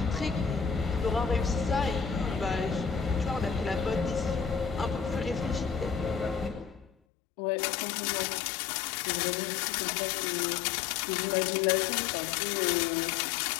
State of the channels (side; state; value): right; drops out; at 6.9 s